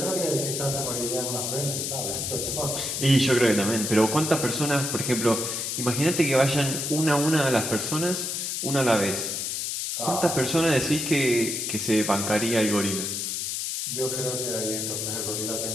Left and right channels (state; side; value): noise; left; hiss, 2 dB below the sound